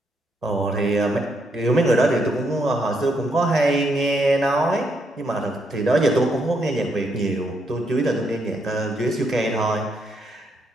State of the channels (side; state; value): both; normal; correlation 0.76